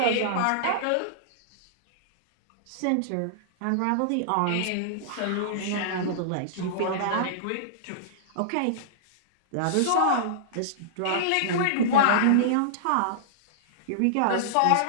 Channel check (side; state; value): both; different; correlation -0.02